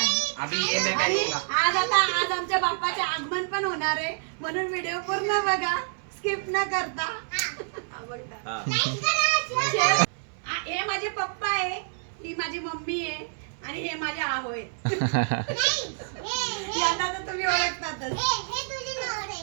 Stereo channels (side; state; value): left; silent; 60 dB below the other